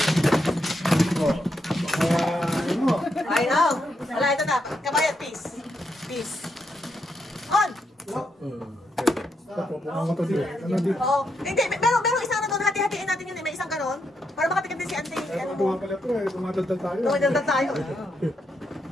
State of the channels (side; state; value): both; normal; correlation 0.81